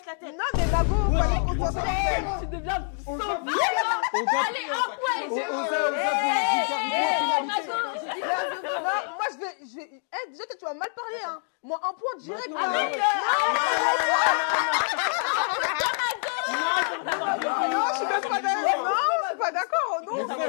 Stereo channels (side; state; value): right; silent; 61 dB below the other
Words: la tête. Non, mais Mago, fallait qu'on soit sincère. Tu deviens Oza, Allez, un point. Non, moi je vais... Eh, déjà, tu vas mal parler, hein. Moi, un point direct. Non, hein. Non, je suis même pas d'accord. Non, je suis pas d'accord. Non,